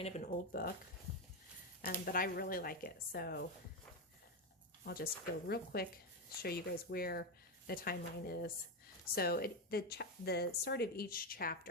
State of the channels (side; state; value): both; normal; correlation 0.09